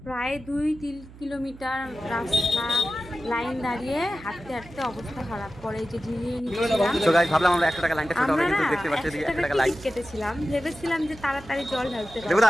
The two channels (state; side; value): noise; right; hum, 19 dB below the sound